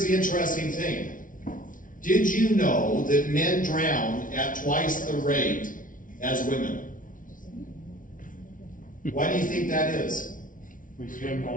the interesting thing. Did you know that men drown at twice the rate as women? Why do you think that is? We swim in the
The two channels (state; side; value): late; right; 0.38 ms